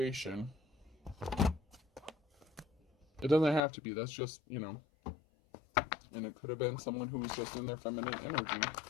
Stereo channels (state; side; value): drops out; right; at 3.6 s